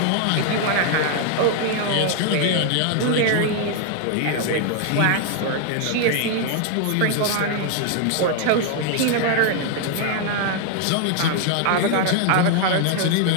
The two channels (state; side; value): different; both; correlation 0.00